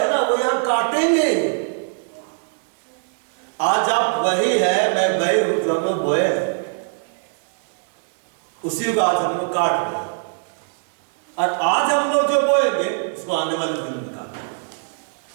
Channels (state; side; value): silent; left; digital silence